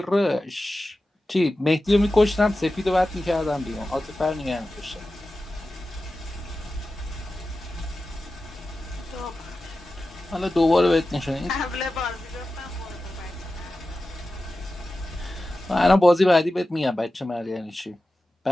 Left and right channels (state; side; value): normal; both; correlation 0.94